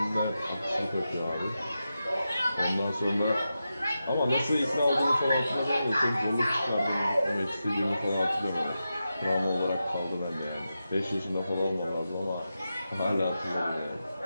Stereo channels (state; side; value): inverted; both; correlation -0.90